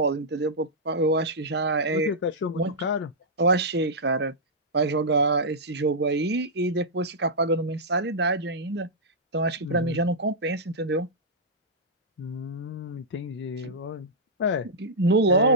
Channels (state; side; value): normal; both; correlation -0.10